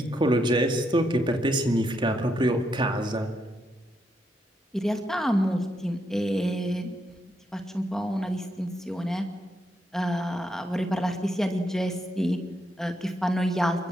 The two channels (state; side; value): normal; both; correlation 0.79